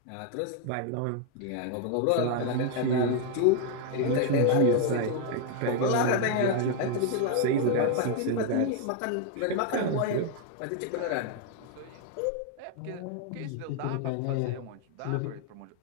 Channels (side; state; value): both; different; correlation 0.00